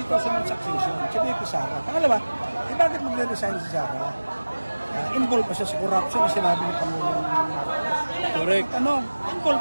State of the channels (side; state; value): both; inverted; correlation -1.00